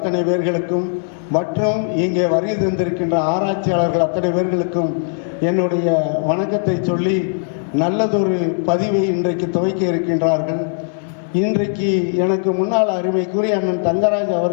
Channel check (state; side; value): silent; right; 64 dB below the other